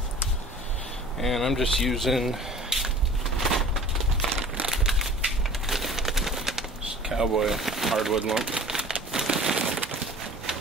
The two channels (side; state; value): both; normal; correlation 0.45